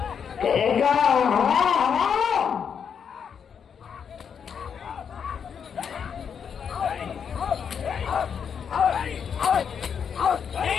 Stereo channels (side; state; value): right; quieter; 7.2 dB